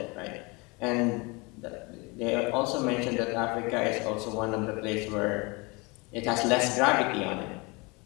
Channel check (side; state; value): right; quieter; 27.3 dB